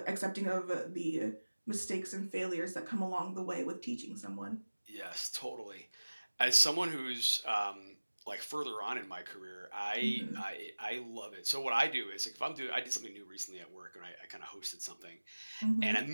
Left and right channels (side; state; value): both; inverted; correlation -1.00